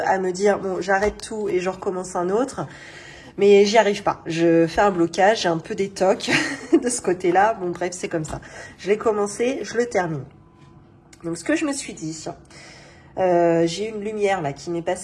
à me dire, bon, j'arrête tout et je recommence un autre. Mais j'y arrive pas. Je fais un blocage, j'ai un peu des tocs de ce côté-là. Bon bref, c'est comme ça. Je l'ai commencé, je le termine. Donc, ce que je me suis dit, j'ai une lumière là qui m'est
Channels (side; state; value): both; identical; correlation 1.00